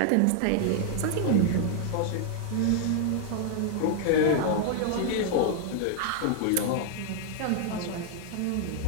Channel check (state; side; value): different; both; correlation -0.01